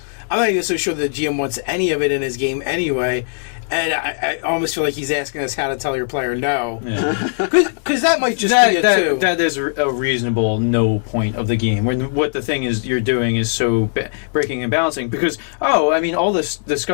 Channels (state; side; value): silent; right; 65 dB below the other